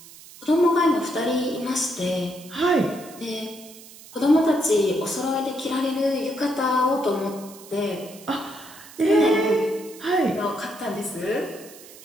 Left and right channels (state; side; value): noise; right; hiss, 19 dB below the sound